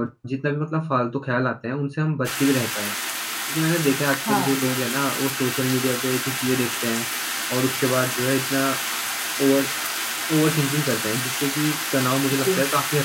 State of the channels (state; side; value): identical; both; correlation 1.00